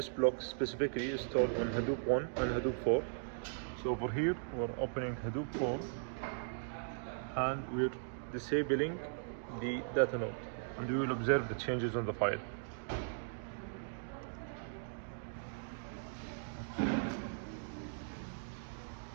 block specifically, is stored on Hadoop 1 and Hadoop 4. So over here we're opening Hadoop 4 and we're disabling the data node, and we will observe the changes on the file.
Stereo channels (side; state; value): left; silent; digital silence